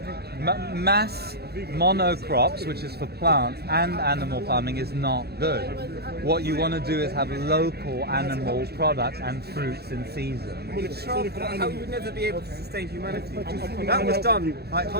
Mass monocrops, which is for plants, and animal farming is not good. What you want to do is have local animal products and fruits in season. How you would never be able to sustain humanity. That was done like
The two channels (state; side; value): late; left; 0.47 ms